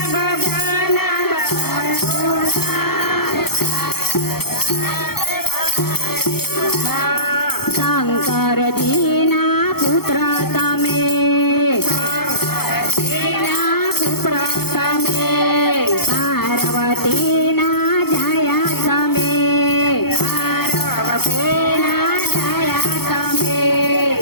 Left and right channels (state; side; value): late; right; 0.96 ms